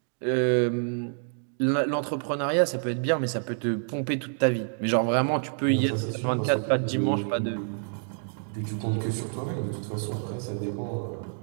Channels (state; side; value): silent; left; digital silence